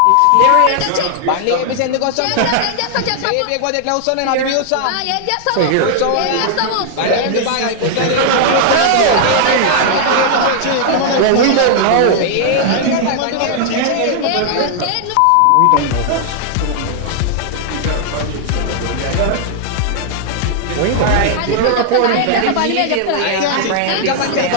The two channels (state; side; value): different; both; correlation -0.01